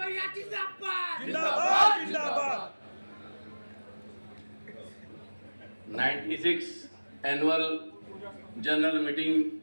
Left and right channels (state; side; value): inverted; both; correlation -1.00